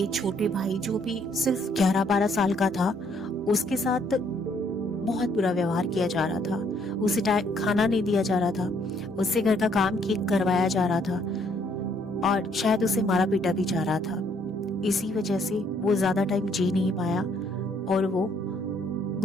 छोटे भाई जो भी सिर्फ 11-12 साल का था, उसके साथ बहुत बुरा व्यवहार किया जा रहा था। उसे खाना नहीं दिया जा रहा था, उससे घर का काम करवाया जा रहा था और शायद उसे मारा पीटा भी जा रहा था। इसी वजह से वो ज्यादा टाइम जी नहीं पाया और वो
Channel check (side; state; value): both; normal; correlation 0.67